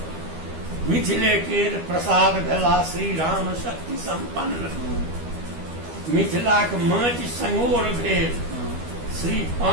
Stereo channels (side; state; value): left; late; 12 ms